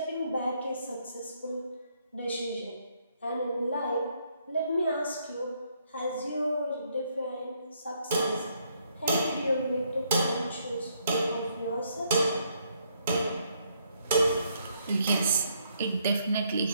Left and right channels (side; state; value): both; inverted; correlation -0.72